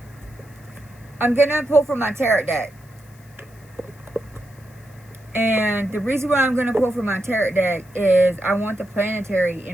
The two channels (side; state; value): left; noise; hiss, 29 dB below the sound